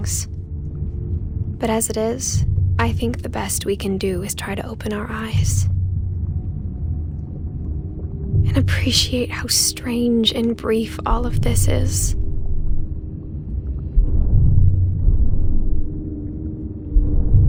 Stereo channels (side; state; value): both; identical; correlation 1.00